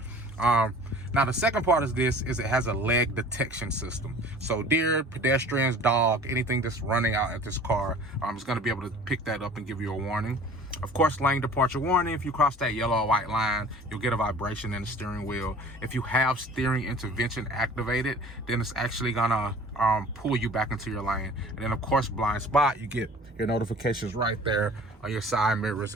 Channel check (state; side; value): normal; both; correlation 0.46